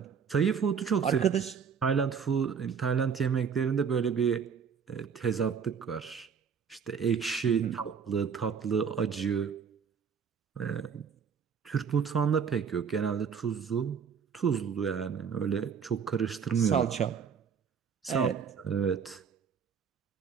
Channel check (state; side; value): quieter; left; 6.7 dB